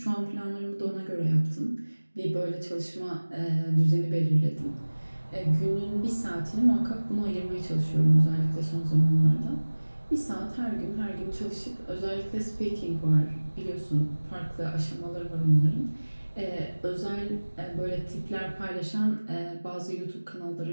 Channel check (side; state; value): both; inverted; correlation -1.00